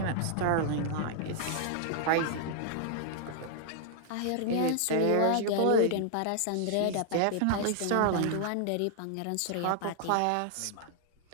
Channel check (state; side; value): different; both; correlation 0.00